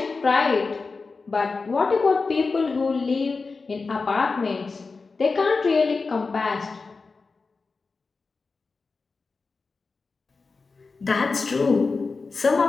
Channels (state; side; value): quieter; right; 4.2 dB